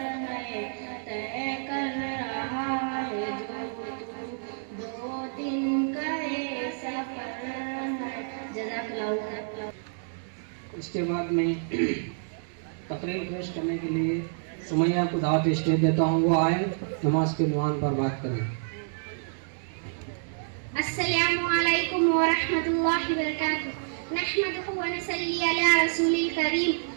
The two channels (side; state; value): left; silent; digital silence